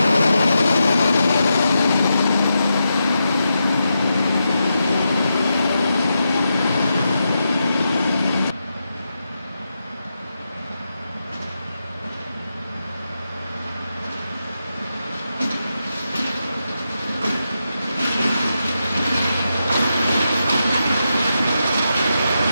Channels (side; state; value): both; inverted; correlation -0.87